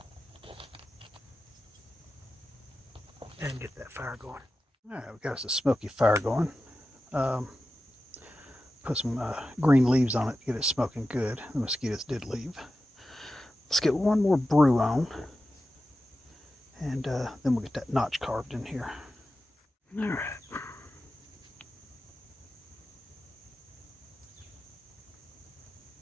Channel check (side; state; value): both; normal; correlation 0.93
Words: And get that fire going. Alright, we got us a smoky fire going. Put some green leaves on it to get it smoking good. The mosquitoes did leave. Let's get one more brew on. And then we'll get that notch carved in here. Alright.